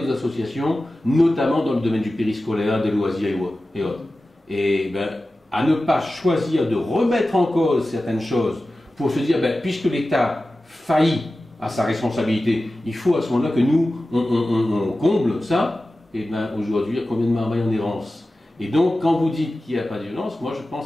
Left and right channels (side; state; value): both; normal; correlation 0.95